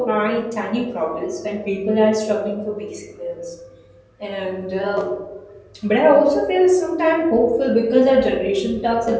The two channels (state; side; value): identical; both; correlation 1.00